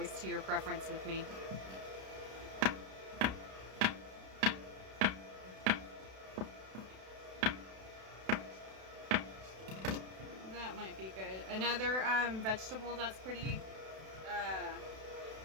to your preference with me. That might be good. Another vegetable that's pretty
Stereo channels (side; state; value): left; late; 32 ms